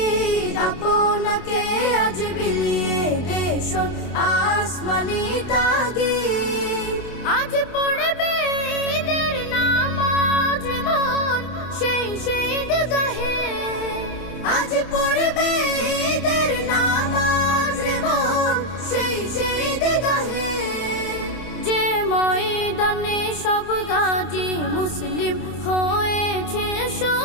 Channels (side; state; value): right; late; 27 ms